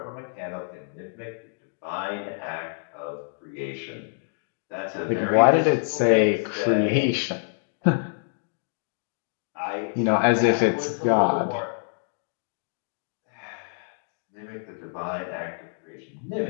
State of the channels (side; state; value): right; silent; digital silence